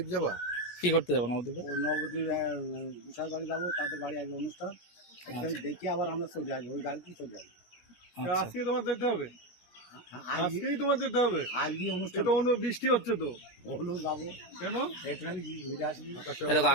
যাবা? কি করতে যাবো নবদ্বীপে? ওই নবদ্বীপ গুছাই বাড়ি যাবো, তাদের বাড়ি আগে অনুষ্ঠান দেখে আবার আমরা চলে আসবো, ওই গাড়িতেই চলে আসবো। আজকে তোমার যেতে হবে? আজকেই তোমার যেতে হবে? আজকে অনুষ্ঠান তো অন্য বৃষ্টি হচ্ছে তো, হলো যাবো কেন? এখানে ঘুরে আসবি।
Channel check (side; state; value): right; late; 17 ms